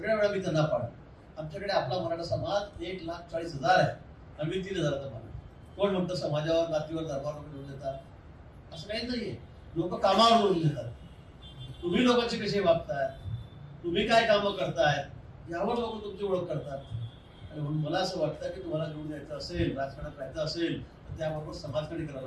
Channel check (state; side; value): identical; both; correlation 1.00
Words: वेळा मी त्यांना पाड. आमच्याकडे आपला मराठा समाज 1,40,000 आहे. आम्ही 3,000चा मान. कोण म्हणतं समाजावर, जातीवर, धर्मावर निवडून देतात? असं काही नाहीये. लोक कामावर निवडून देतात. तुम्ही लोकांची कशी वागताय, तुम्ही काय कामं करताय, यावर लोक तुमची ओळख करतात. आणि म्हणून मला असं वाटतं की तुम्हाला निवडून द्यायचं असेल, राजकारणात राहायचं असेल, तर त्याबरोबर समाजकार्य करावं